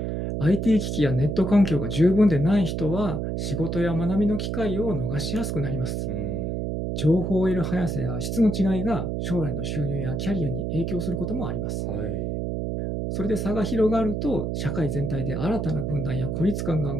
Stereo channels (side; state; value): right; noise; hum, 2 dB below the sound